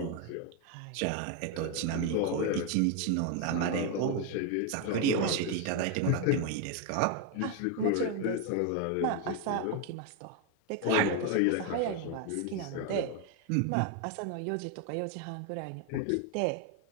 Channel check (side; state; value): both; different; correlation 0.01